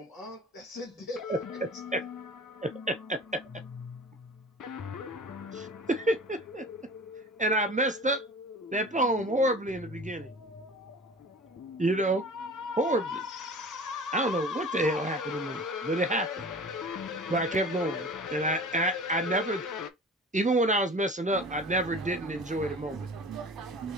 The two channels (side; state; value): both; normal; correlation 0.40